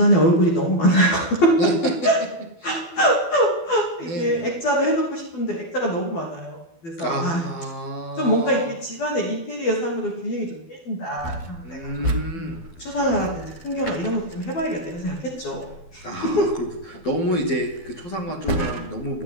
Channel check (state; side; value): late; right; 12 ms